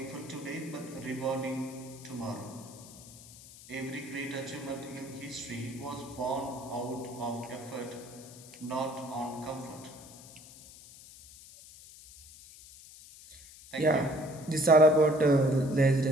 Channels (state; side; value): noise; left; hiss, 19 dB below the sound